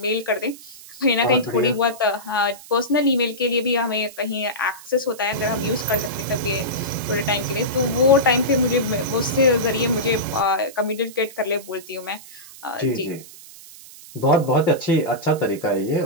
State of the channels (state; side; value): noise; right; hiss, 18 dB below the sound